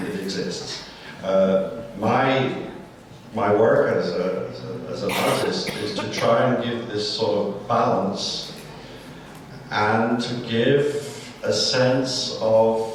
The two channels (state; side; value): identical; both; correlation 1.00